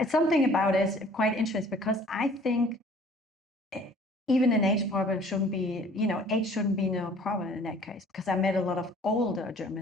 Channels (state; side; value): normal; both; correlation 0.53